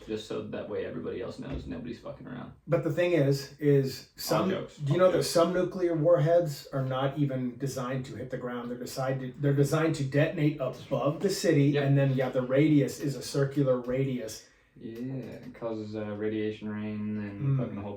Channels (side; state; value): both; identical; correlation 1.00